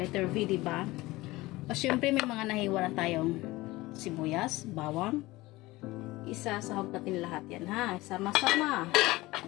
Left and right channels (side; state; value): right; quieter; 19.7 dB